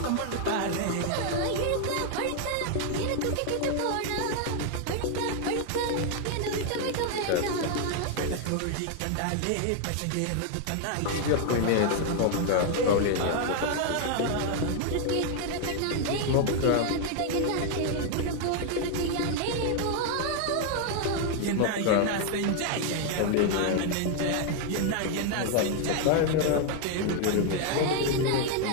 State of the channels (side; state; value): both; different; correlation 0.00